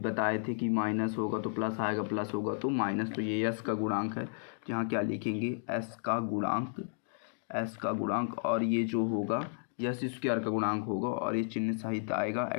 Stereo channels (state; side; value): silent; right; digital silence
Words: बताए थे कि माइनस होगा तो प्लस आएगा, प्लस होगा तो माइनस। तो ये s का गुणांक है, तो यहाँ क्या लिखेंगे, s का गुणांक, s का गुणांक, और ये जो होगा s² का गुणांक होगा, और ये चिन्ह सहित आएगा